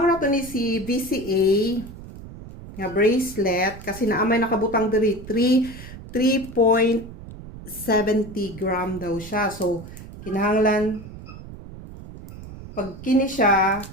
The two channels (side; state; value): right; noise; rumble, 14 dB below the sound